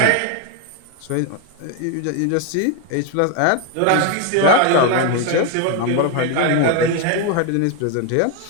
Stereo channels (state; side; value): different; both; correlation 0.01